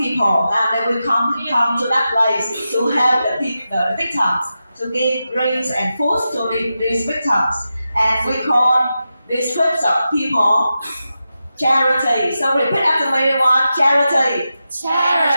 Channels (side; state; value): both; inverted; correlation -0.90